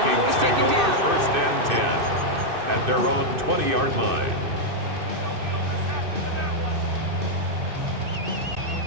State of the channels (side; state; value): left; late; 2.6 ms